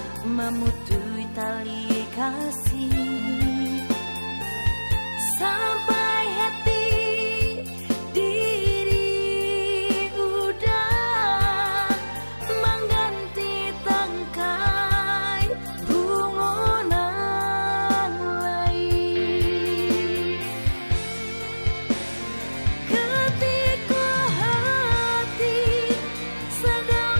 memutui tali kasih. Sampai hati diri udah mengganti tangkai bungonan lain. Ketika hati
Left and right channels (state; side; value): inverted; both; correlation -1.00